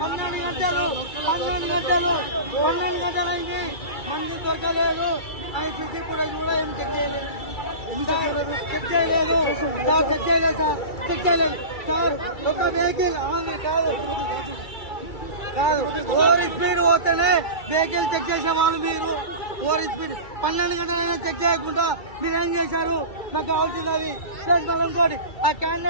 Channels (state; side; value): late; right; 2.3 ms